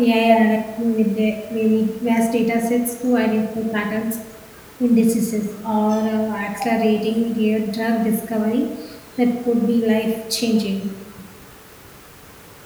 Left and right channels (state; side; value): identical; both; correlation 1.00